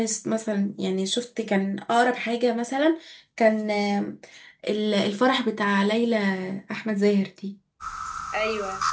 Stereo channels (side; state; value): both; identical; correlation 1.00